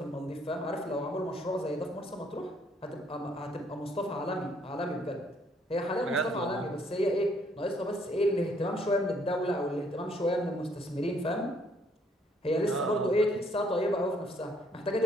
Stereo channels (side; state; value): both; normal; correlation 0.66